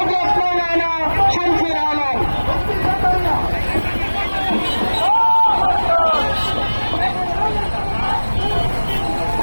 মাওলানা শামসুল আলম।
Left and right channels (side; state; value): both; inverted; correlation -1.00